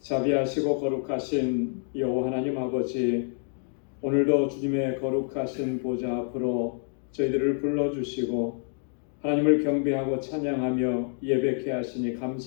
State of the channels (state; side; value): silent; right; 60 dB below the other